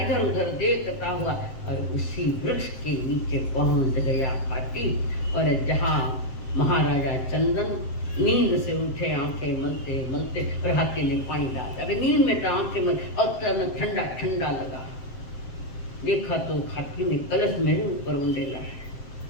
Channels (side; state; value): right; late; 7.6 ms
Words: इधर उधर देखता हुआ, और उसी वृक्ष के नीचे पहुंच गया हाथी। और जहाँ महाराजा चंदन नींद से उठे, आंखें मलते मलते, और हाथी ने पानी डाला। अगर नींद में तो आंखें मल और ठंडा ठंडा लगा, देखा तो हाथी ने कलश मेरे ऊपर उंडेला है।